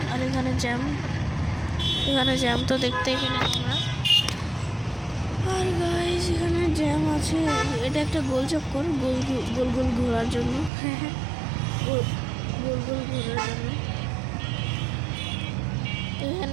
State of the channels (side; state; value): left; drops out; at 10.7 s